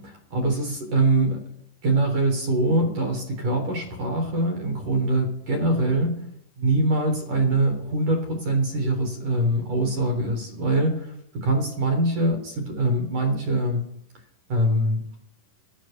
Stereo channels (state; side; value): late; left; 10 ms